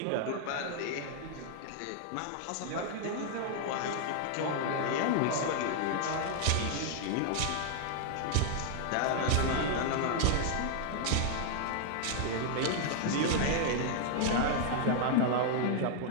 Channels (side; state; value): both; different; correlation 0.00